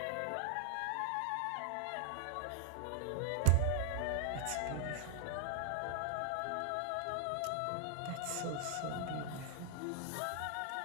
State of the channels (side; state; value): both; different; correlation 0.00